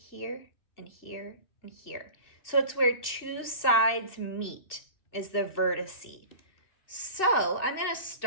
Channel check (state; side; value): late; right; 2.6 ms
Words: and here and here. So it's where two sides meet is the vertice. So I'm going to